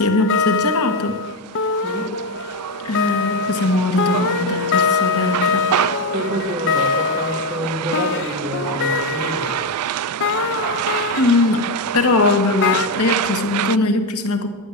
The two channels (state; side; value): normal; both; correlation 0.10